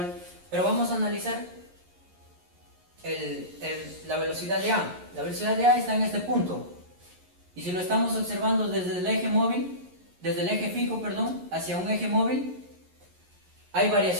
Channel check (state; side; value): late; left; 11 ms